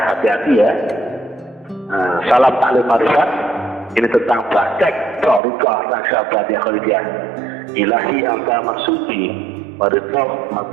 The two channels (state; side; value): drops out; left; at 5.4 s